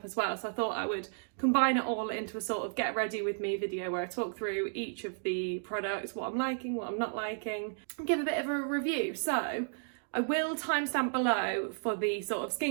as well, so I thought I would combine it all into a sort of get ready with me video where I talk through each of the products, what I'm liking, what I'm not liking, and give a bit of a review. So I will timestamp below for the sort of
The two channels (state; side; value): silent; left; digital silence